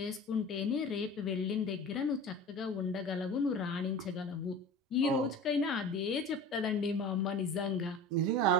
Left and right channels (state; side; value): normal; both; correlation 0.36